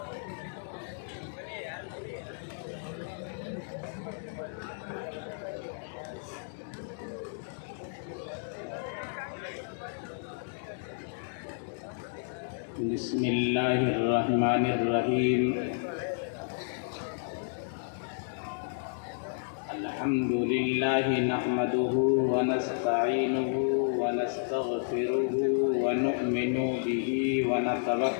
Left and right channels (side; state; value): right; silent; digital silence